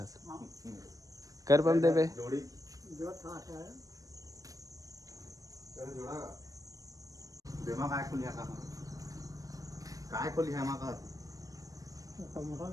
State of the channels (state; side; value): late; left; 0.17 ms